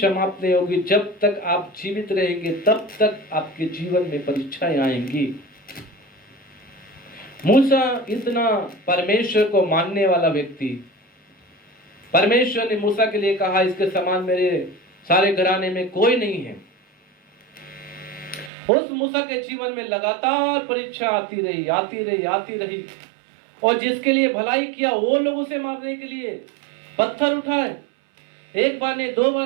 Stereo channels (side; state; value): left; drops out; at 18.5 s